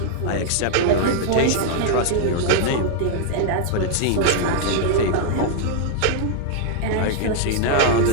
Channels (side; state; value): both; different; correlation 0.00